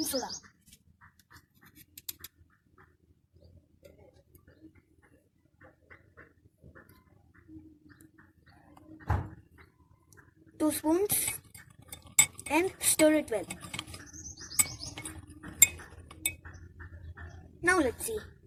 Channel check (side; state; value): both; identical; correlation 1.00